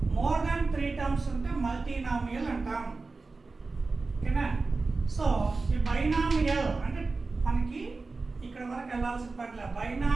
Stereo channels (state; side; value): quieter; left; 3.9 dB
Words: మోర్ దాన్ 3 టర్మ్స్ ఉంటే మల్టీనామియల్ అంటాం. ఓకేనా? సో ఈ బైనామియల్ అంటే మనకి ఇక్కడ వరకు వెళ్ళాల్సిన పట్ల